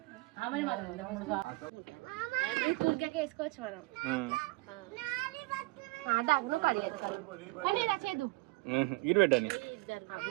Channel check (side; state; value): left; quieter; 23.7 dB